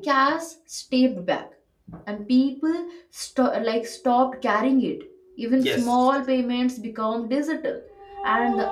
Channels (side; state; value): both; identical; correlation 1.00